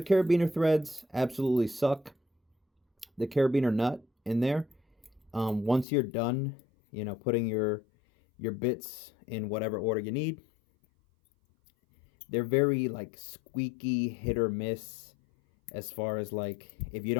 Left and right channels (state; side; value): drops out; right; at 5.9 s